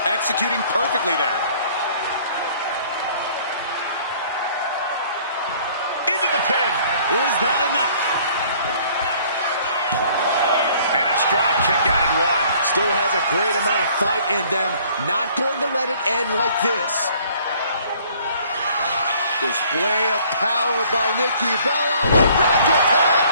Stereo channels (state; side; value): inverted; both; correlation -0.57